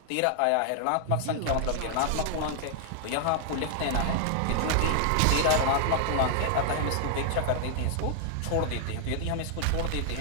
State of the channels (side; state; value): both; different; correlation 0.00